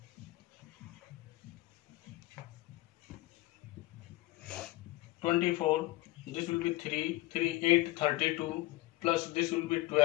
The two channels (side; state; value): right; quieter; 18.5 dB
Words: This will be 3, 3, 8, 32 plus this will be